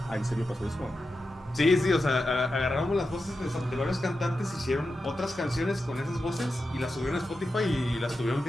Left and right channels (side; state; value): both; normal; correlation 0.90